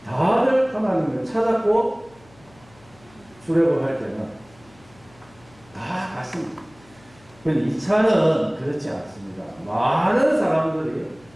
다들 하나님을 찾았고 출애굽할 때는 다 갔습니다. 그런데 2차는 그렇지 않습니다. 많은 사람들이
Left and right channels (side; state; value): left; noise; hum, 27 dB below the sound